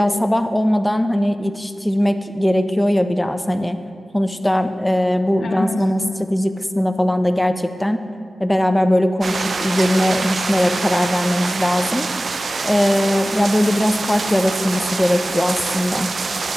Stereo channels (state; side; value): normal; both; correlation 0.97